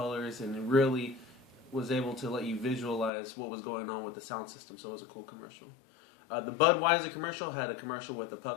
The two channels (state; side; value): drops out; right; at 3.1 s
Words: and it really was able to let you visualize what was going on with the sound system, so it was a cool commercial. The Budweiser commercial had a commercial with a